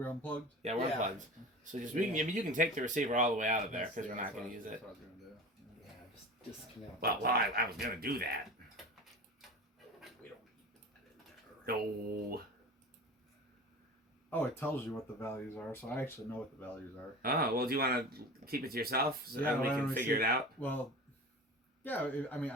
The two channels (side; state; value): both; normal; correlation 0.34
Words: unplugged? Yeah, we're Yeah. unplugged. So just we can. I mean, you can take the receiver all the way out of there because we're not going to use it. That's what I was gonna do. Yeah, just disconnect. Well, I was going to do that. We don't need that in there. No. Oh, it tells you what the values are, so I actually know what the values are. Oh, well, do you want to keep it to yourself so Yeah, that we why can don't we figure see- it out? Well, yeah, I mean,